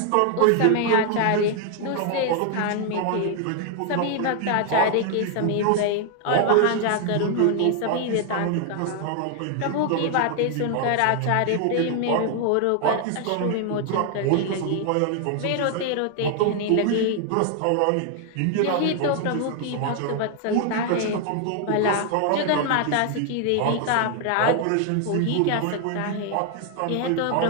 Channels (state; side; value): different; both; correlation 0.00